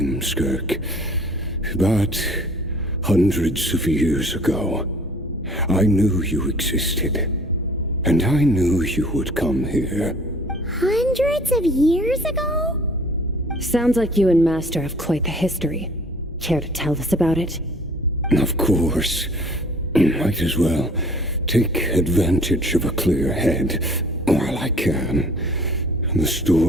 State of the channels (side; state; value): both; normal; correlation 0.52